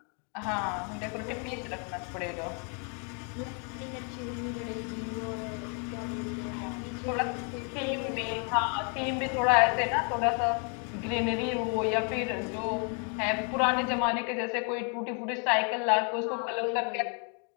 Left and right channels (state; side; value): quieter; right; 39.2 dB